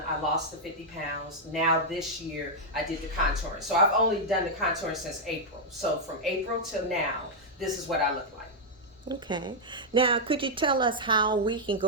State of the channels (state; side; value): normal; both; correlation -0.04